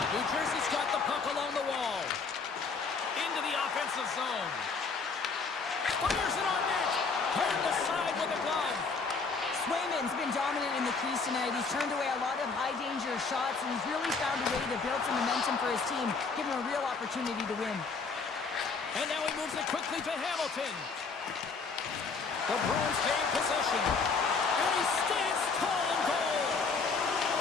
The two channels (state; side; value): quieter; right; 4.7 dB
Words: Jersey's got the puck along the wall. Into the offensive zone. Fires it on net. Turned aside with a glove. Swayman's been dominant in the crease tonight. He's turned away a lot of high-danger shots, and he's really found a way to build some momentum for his team, give him a real opportunity to win. And now he moves it quickly to Hamilton. The Bruins gain possession. And he stands tall in goal.